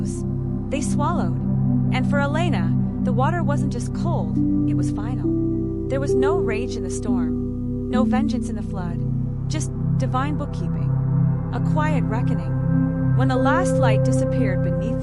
They swallowed. And for Elena, the water wasn't just cold, it was final. There was no rage in the storm, no vengeance in the flood, just divine bookkeeping, a quiet reckoning. When the last light disappeared beneath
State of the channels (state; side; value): identical; both; correlation 1.00